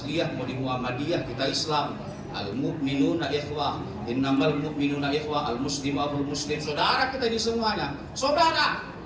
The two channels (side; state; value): both; identical; correlation 1.00